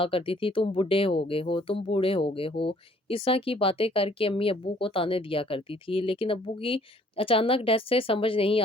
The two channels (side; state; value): both; normal; correlation 0.59